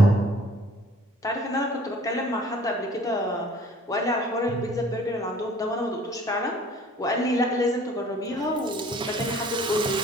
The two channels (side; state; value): both; normal; correlation 0.52